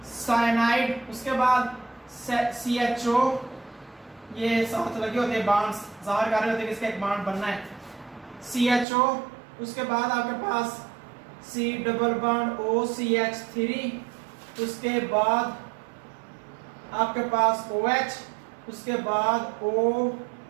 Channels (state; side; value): drops out; left; at 8.8 s